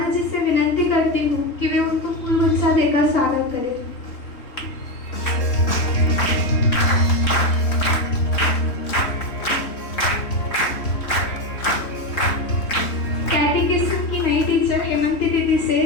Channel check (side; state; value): right; late; 3.4 ms